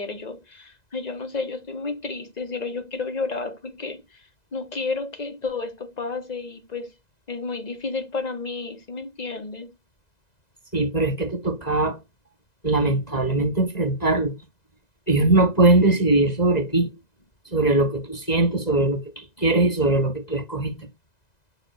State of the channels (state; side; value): late; right; 2.0 ms